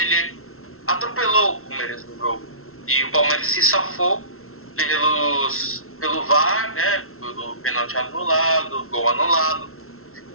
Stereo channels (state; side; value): late; right; 0.62 ms